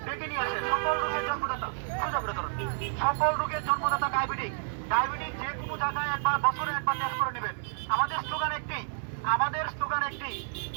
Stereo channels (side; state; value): left; silent; 58 dB below the other